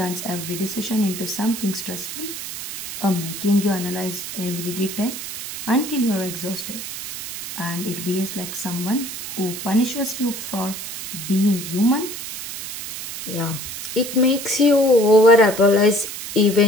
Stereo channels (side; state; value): right; noise; hiss, 7 dB below the sound